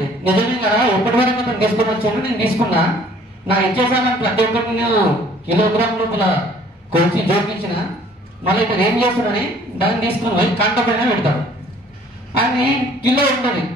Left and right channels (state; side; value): normal; both; correlation 0.56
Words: నిజమే కదా ఎప్పటి వరకు అతను తీసుకుని వచ్చాడు, నేను తీసుకున్నా, నా ఇచ్చేసామని ప్రతి ఒక్కరికి నేను కిలోగ్రామ్ లోపల కొలిచి జోకించిన, మళ్ళీ ఇక్కడ ఏం చేస్తున్నాడని దాన్ని తీసుకుని పోయి కంట పైన పెడతాడు. అది కిలో ఉంటుంది,